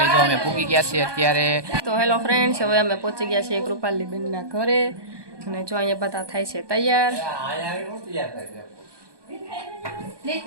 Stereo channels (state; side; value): late; left; 1.2 ms